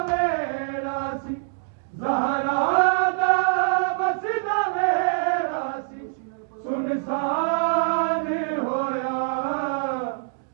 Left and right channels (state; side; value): silent; left; digital silence